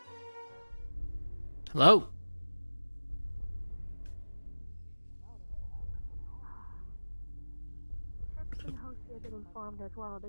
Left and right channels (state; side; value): inverted; both; correlation -1.00